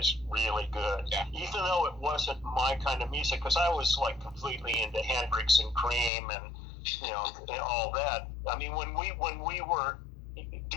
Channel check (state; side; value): drops out; right; at 6.1 s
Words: really good. Yeah. Even though it wasn't my kind of music, because I was like completely into Hendrix and Cream and and all that. I mean, when we were